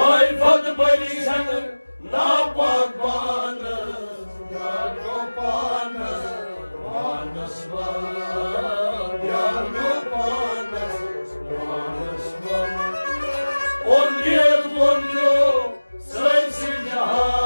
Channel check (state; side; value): inverted; both; correlation -1.00